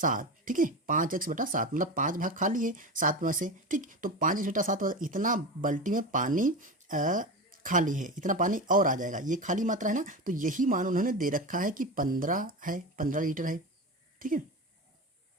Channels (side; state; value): both; normal; correlation 0.24